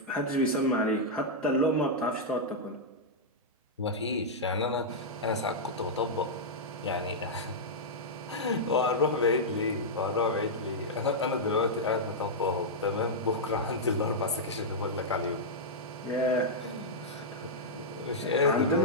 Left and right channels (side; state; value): both; normal; correlation -0.08